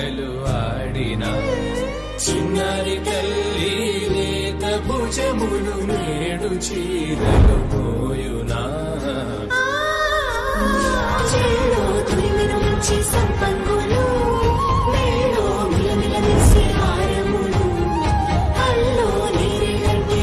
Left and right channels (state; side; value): identical; both; correlation 1.00